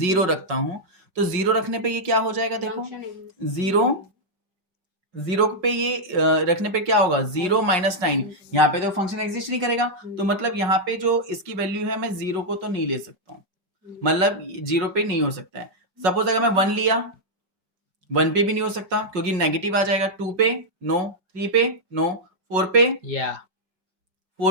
रखता हूँ, तो 0 रखने पे ये क्या हो जाएगा? देखो 0 पे ये रखने पे क्या होगा? 0 माइनस 9, यहाँ पे तो फंक्शन एग्जिस्ट नहीं करेगा। तो मतलब यहाँ पे जो इसकी वैल्यू है, मैं 0 को तो नहीं ले सकता हूँ, मतलब 0 पे नहीं हो सकता है। सपोज अगर मैं 1 लिया, 1 पे भी नहीं हो सकता क्योंकि नेगेटिव आ जाएगा। 2 पे नो, 3 पे नो, 4 पे, या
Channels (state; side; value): late; left; 5.5 ms